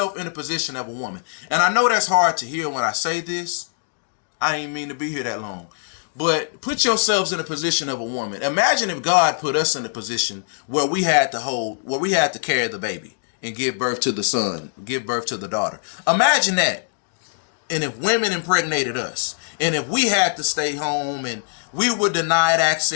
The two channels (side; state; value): right; silent; digital silence